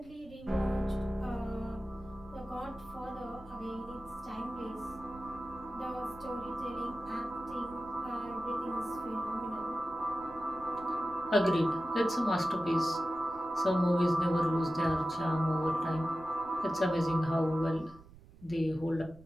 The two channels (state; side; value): noise; right; rumble, 21 dB below the sound